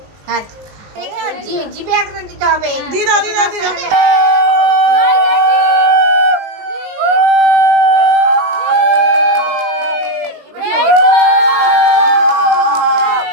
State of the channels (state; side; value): late; left; 19 ms